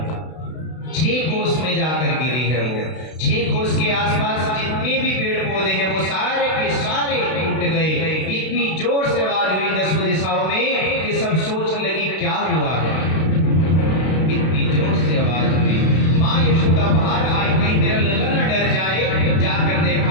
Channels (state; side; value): late; right; 32 ms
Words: 6 कोस में जाकर गिरी है वो। 6 कोस के आसपास जितने भी पेड़ पौधे हैं वो सारे के सारे टूट गए। इतनी जोर से आवाज हुई 10 दिशाओं में कि सब सोचने लगी क्या हुआ है। इतनी जोर से आवाज हुई, माँ यशोदा बाहर आई, कहीं मेरा लला न डर जाए। जाकर